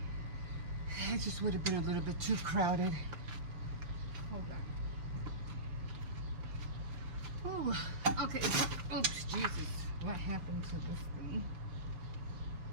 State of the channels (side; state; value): left; late; 5.9 ms